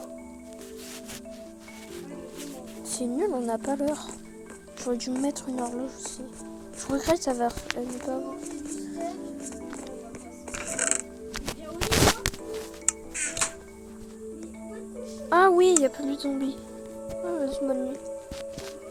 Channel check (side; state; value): both; identical; correlation 1.00